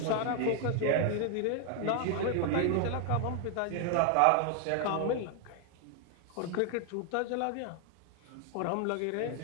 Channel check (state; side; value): different; both; correlation 0.00